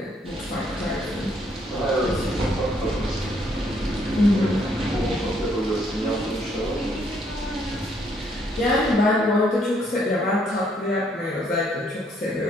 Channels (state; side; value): normal; both; correlation 0.69